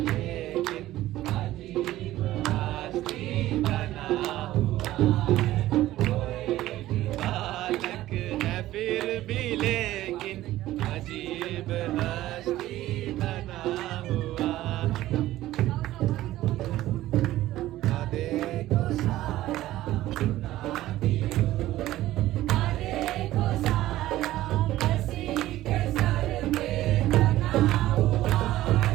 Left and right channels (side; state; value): left; quieter; 15.2 dB